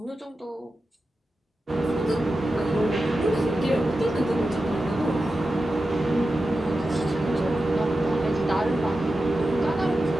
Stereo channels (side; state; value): both; normal; correlation 0.92